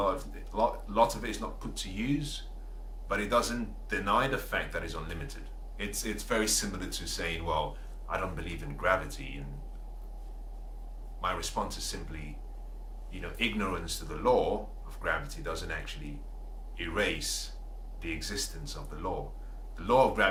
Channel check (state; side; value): identical; both; correlation 1.00